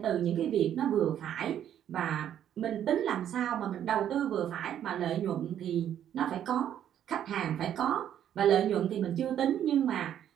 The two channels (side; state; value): left; quieter; 10.3 dB